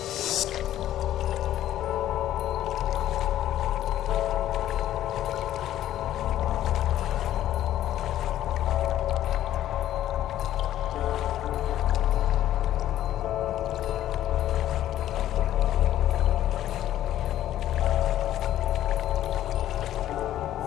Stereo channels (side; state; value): right; quieter; 12.5 dB